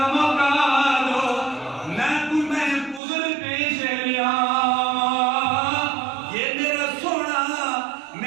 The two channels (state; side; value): drops out; left; at 3.0 s